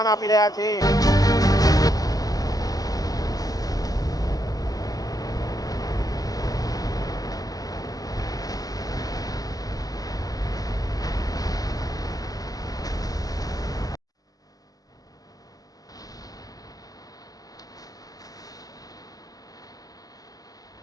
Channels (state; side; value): late; right; 0.18 ms